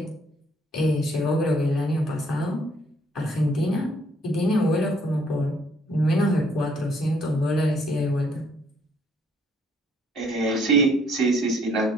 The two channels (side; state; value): both; normal; correlation 0.65